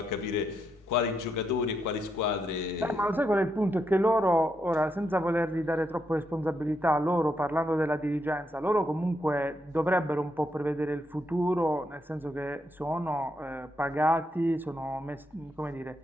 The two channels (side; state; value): both; normal; correlation 0.80